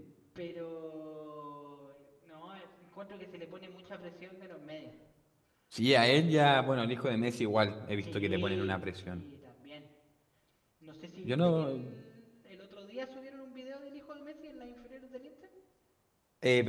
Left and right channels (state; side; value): identical; both; correlation 1.00